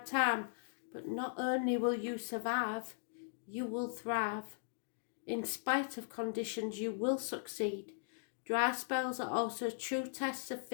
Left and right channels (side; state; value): right; silent; digital silence